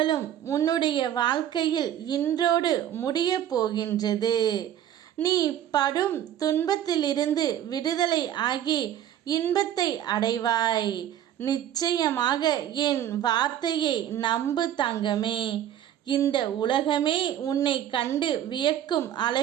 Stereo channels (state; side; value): quieter; left; 11.0 dB